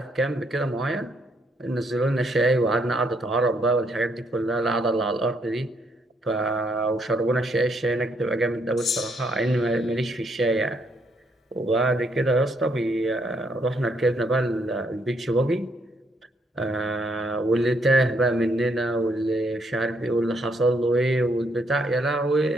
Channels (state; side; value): normal; both; correlation 0.73